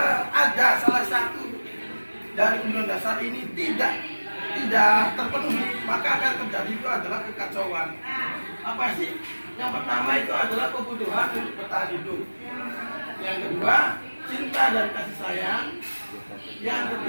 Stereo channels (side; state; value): both; inverted; correlation -1.00